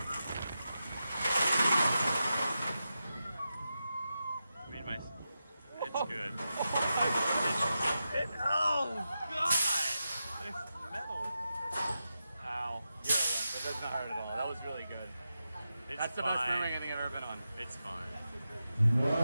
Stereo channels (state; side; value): inverted; both; correlation -0.90